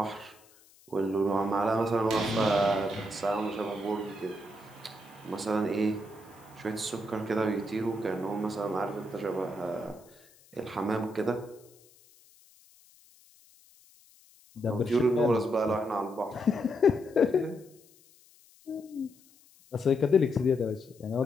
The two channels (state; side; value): noise; left; hiss, 27 dB below the sound